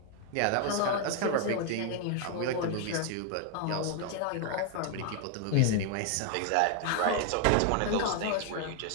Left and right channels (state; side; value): different; both; correlation 0.00